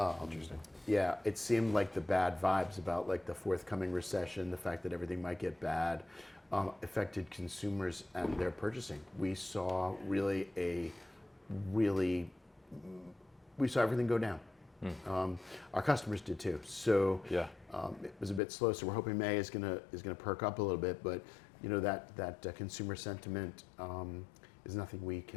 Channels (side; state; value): right; drops out; at 18.4 s